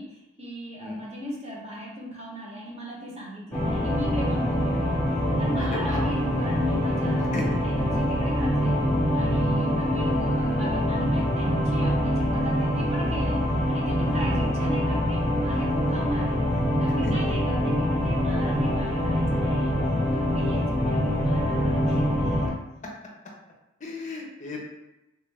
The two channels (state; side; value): normal; both; correlation 0.76